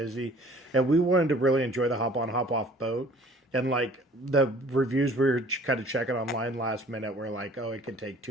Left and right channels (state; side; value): normal; both; correlation 0.52